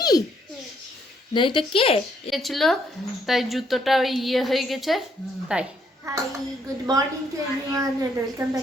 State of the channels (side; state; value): both; normal; correlation 0.71